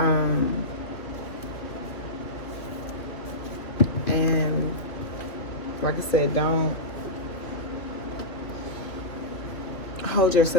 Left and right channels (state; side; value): late; right; 2.5 ms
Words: And like I said, don't hold